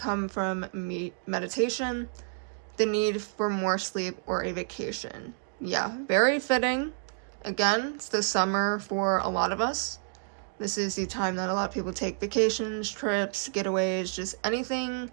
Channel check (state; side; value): silent; left; 57 dB below the other